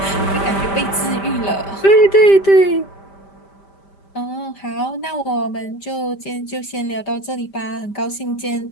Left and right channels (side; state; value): right; late; 5.1 ms